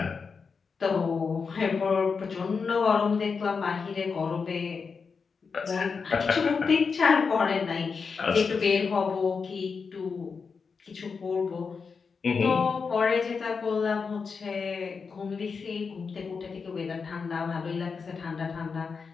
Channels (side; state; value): right; quieter; 5.3 dB